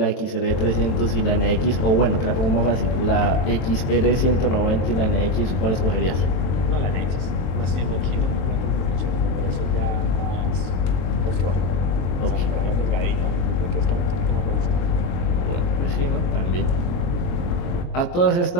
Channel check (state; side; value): late; right; 22 ms